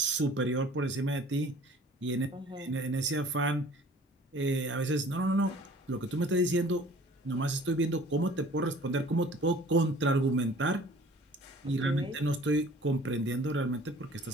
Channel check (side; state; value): both; normal; correlation 0.49